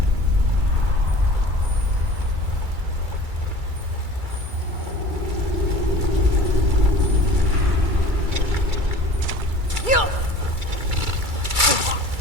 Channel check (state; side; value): late; left; 2.3 ms